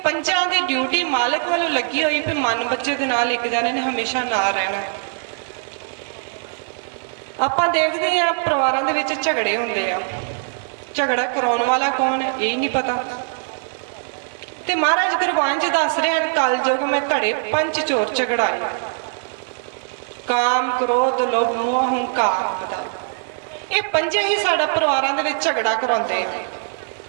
ਪੰਜਾਂ ਦੀ ਡਿਊਟੀ ਮਾਲਕ ਵੱਲੋਂ ਲੱਗੀ ਹੋਈ ਵੀ ਮਨ ਬੱਚੇ ਦੇ ਨਾਲ ਇੱਕ ਜਣੇ ਨੇ ਹਮੇਸ਼ਾ ਨਾਲ ਰਹਿਣਾ। ਆਪਾਂ ਦੇਖਦੇ ਆ ਪਰਿਵਾਰਾਂ ਦੇ ਵਿੱਚ ਝਗੜੇ ਹੁੰਦੇ ਆ, ਝਗੜਾ ਕਰਾਉਣ ਵਾਲਾ ਕੌਣ ਹੈ ਇਹ ਨਹੀਂ ਪਤਾ। ਤੇ ਮਹਾਰਾਜ ਗੁਰਬਾਣੀ 'ਚ ਦੱਸ ਰਹੇ ਹਨ ਕਲਯੁਗ ਮੈਂ ਘੜੇ ਪੰਜ ਚੋਰ ਝਗੜਾਏ, ਕਾਮ ਕ੍ਰੋਧ ਲੋਭ ਮੋਹ ਹੰਕਾਰ ਬਦਾ। ਇਹ ਪੰਜੇ ਹੀ ਸਾਡਾ ਪਰਿਵਾਰਾਂ ਦੇ ਵਿੱਚ ਝਗੜਾ ਕਰਾਉਂਦੇ ਆ।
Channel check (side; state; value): left; silent; digital silence